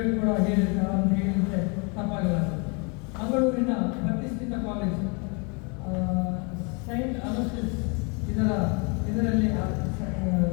ಕೂಡ ಹೇಳಿರ್ತಾರೆ ಅಂತ ಹೇಳಿದರೆ ತಪ್ಪಾಗಲ್ಲ. ಮಂಗಳೂರಿನ ಪ್ರತಿಷ್ಠಿತ ಕಾಲೇಜ್ ಸೈಂಟ್ ಅಲೋಸಿಸ್ ಇದರಲ್ಲಿ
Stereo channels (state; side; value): quieter; right; 33.1 dB